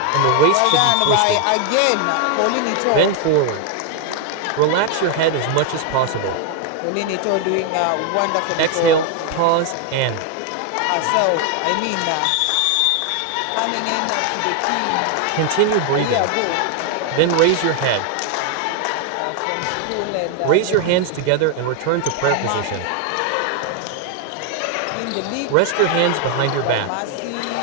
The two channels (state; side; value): different; both; correlation 0.01